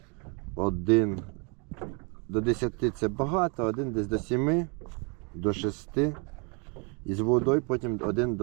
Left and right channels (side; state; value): left; quieter; 33.7 dB